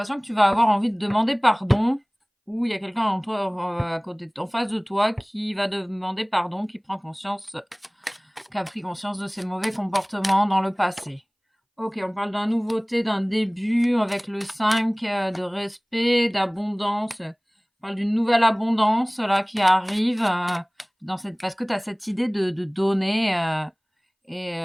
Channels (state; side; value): identical; both; correlation 1.00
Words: que tu vas avoir envie de demander pardon, ou il y a quelqu'un en toi, à côté, en face de toi, qui va demander pardon, qui a pris conscience de ses mauvais comportements dans le passé. Ok, on parle d'une nouveauté, d'un début avec le 5, de respect, d'abondance. On parle d'une nouvelle abondance là qui arrive parce que tu as cette idée de donner